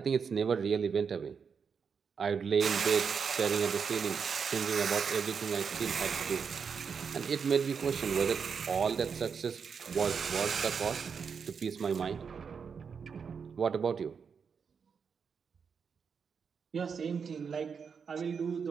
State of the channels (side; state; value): left; quieter; 6.2 dB